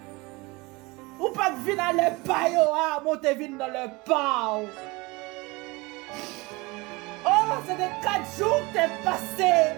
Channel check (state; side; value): quieter; left; 24.2 dB